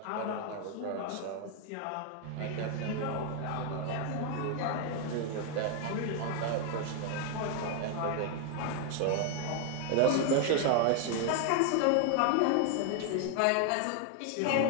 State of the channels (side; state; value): both; different; correlation 0.01